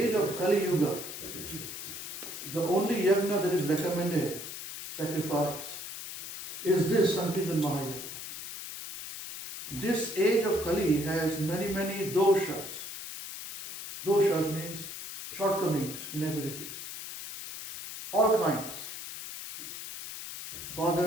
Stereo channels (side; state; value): left; noise; hiss, 9 dB below the sound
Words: of Kali Yuga, the only yajna that is recommended, sacrifice, is this Sankirtan Mahayajna. This age of Kali has many doshas. Doshas means shortcomings, inabilities. All kinds.